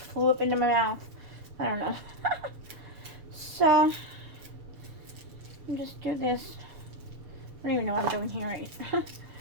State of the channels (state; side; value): late; left; 7.0 ms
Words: up into my mouth. I don't know. So, I'll just do this. I don't even know what I'm doing here right.